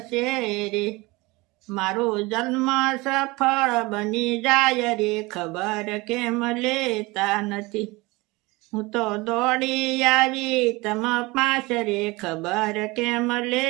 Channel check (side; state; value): left; quieter; 23.2 dB